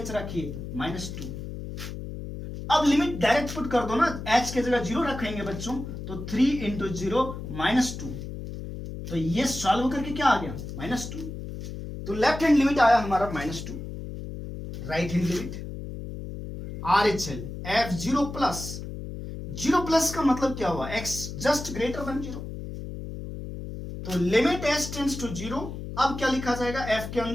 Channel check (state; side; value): noise; left; hum, 8 dB below the sound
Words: रखिए -2। अब लिमिट डायरेक्ट पुट कर दो ना, h के जगह 0 रखेंगे बच्चों, तो 3 इंटू 0 -2, तो ये सॉल्व करके क्या आ गया -2, तो लेफ्ट हैंड लिमिट आया हमारा -2, right hand limit RHL f0 plus 0 plus का मतलब क्या हुआ, x जस्ट ग्रेटर देन 0, तो लिमिट h टेंड्स टू 0, अब क्या लिखा जाएगा f के